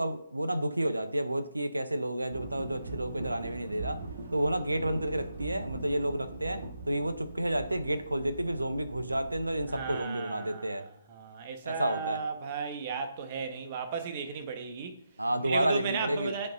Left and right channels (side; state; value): both; inverted; correlation -0.86